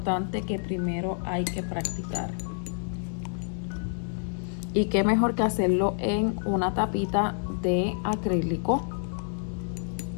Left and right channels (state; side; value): silent; right; digital silence